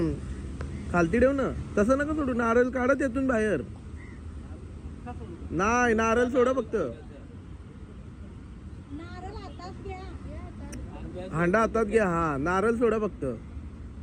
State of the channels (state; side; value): identical; both; correlation 1.00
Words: खालती ठेव ना. तसं नका सोडू. नारळ काढा त्यातून बाहेर. नाही नारळ सोडा फक्त. नारळ हातात घ्या. हांडा हातात घ्या. हा नारळ सोडा फक्त.